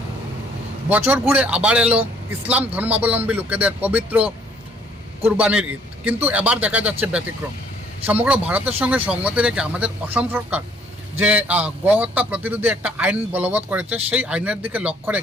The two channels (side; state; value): both; normal; correlation 0.61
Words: বছর ঘুরে আবার এলো ইসলাম ধর্মাবলম্বী লোকেদের পবিত্র কুরবানির ঈদ, কিন্তু এবার দেখা যাচ্ছে ব্যতিক্রম। সমগ্র ভারতের সঙ্গে সঙ্গতি রেখে আমাদের অসম সরকার যে গোহত্যা প্রতিরোধী একটা আইন বলবৎ করেছে, সেই আইনের দিকে লক্ষ্য